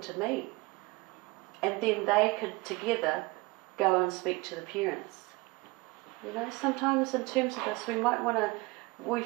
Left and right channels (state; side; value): quieter; left; 24.2 dB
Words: to me. And then they could together go and speak to the parents. Sometimes in terms of this, we